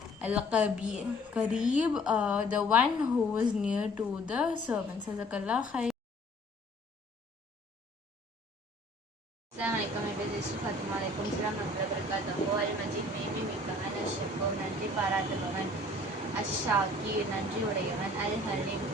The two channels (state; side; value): normal; both; correlation 0.54